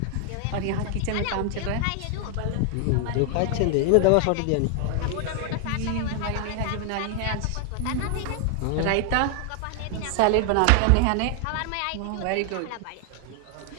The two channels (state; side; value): different; both; correlation 0.00